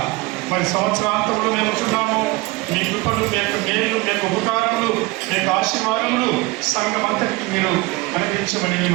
మరి సంవత్సరాంతంలో మేము ఉంటున్నాము. మీ కృపలు, మీ యొక్క మేలు, మీ యొక్క ఉపకారములు, మీ యొక్క ఆశీర్వాదములు సంఘం అంతటికి మీరు అనుగ్రహించమని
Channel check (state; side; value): quieter; left; 22.3 dB